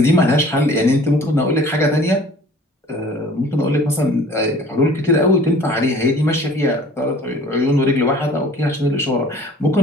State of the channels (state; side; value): normal; both; correlation 0.49